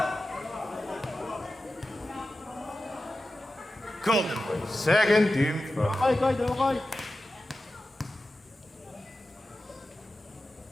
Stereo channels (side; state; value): both; normal; correlation 0.93